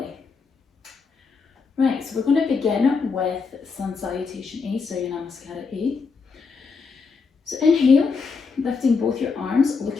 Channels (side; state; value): right; quieter; 5.0 dB